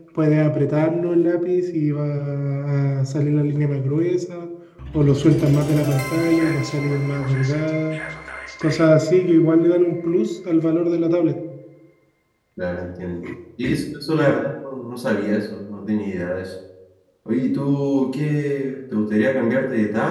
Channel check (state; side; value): identical; both; correlation 1.00